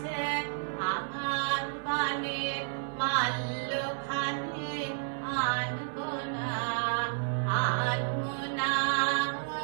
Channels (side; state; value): left; silent; 56 dB below the other